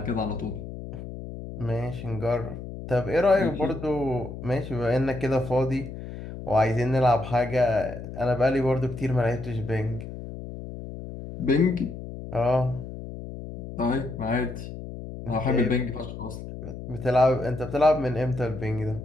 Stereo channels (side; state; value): left; noise; hum, 10 dB below the sound